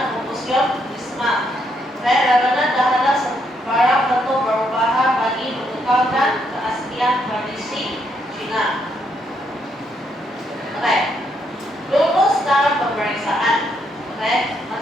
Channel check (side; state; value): both; normal; correlation 0.75